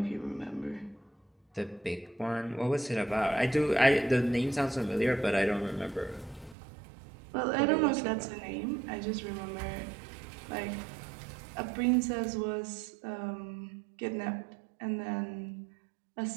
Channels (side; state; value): left; drops out; at 6.6 s